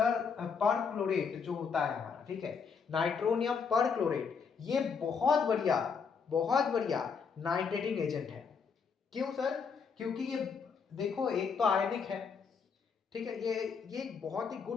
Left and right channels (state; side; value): quieter; right; 5.9 dB